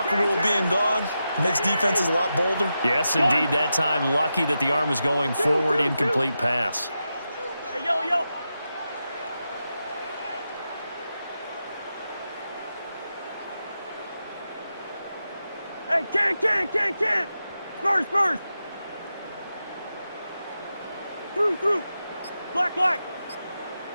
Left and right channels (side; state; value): both; inverted; correlation -0.89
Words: rule being gone makes defenses a lot bolder? Yes, indeed. That time, lucky that the arm was going forward. Incomplete pass. Hey, yellow. Hey, can't. Spurs. Through. Black.